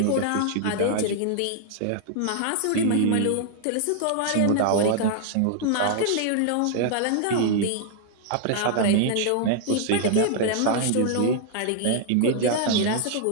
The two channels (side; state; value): both; different; correlation -0.01